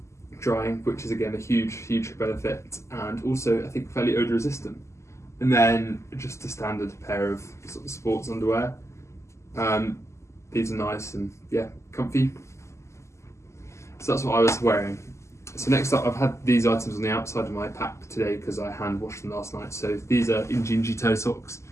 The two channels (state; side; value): late; right; 0.13 ms